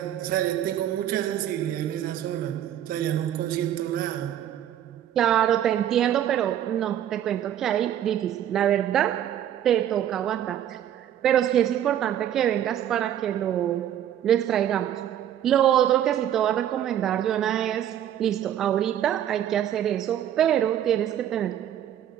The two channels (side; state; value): left; quieter; 10.8 dB